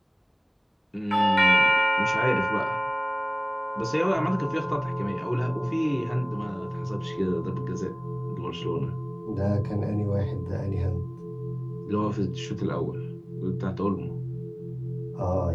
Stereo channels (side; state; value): both; identical; correlation 1.00